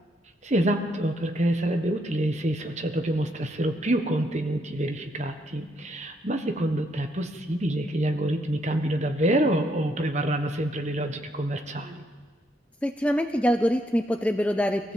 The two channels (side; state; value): both; normal; correlation 0.74